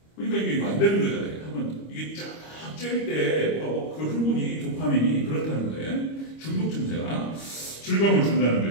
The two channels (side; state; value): right; late; 25 ms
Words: 그러니까 이게 안 되는 거잖아요. 한번 이게 쫙 쬐일 때 그 흥분이 도파민이 그렇다는 거예요. 중독 증세가 즐거움을 준다는